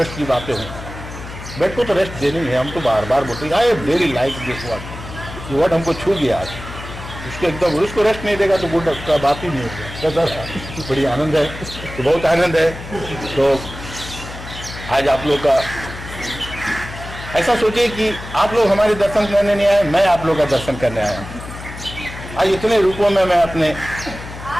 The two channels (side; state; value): left; noise; hum, 12 dB below the sound